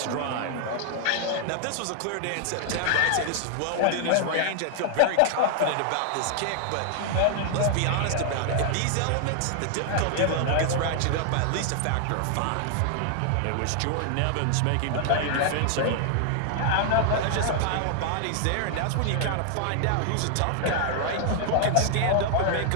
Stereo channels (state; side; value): different; both; correlation 0.00